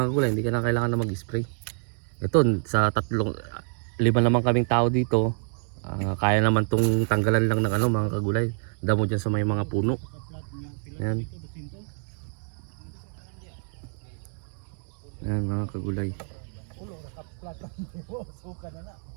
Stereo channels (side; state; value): left; silent; 60 dB below the other